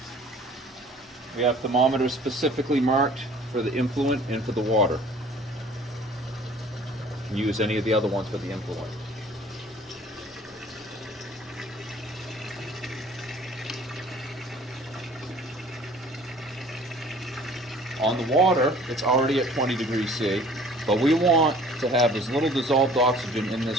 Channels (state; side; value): normal; both; correlation 0.50